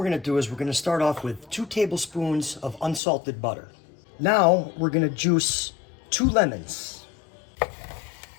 going to do is we're going to start off with 2 tablespoons of unsalted butter. Now we're going to juice 2 lemons.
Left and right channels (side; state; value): right; drops out; at 3.0 s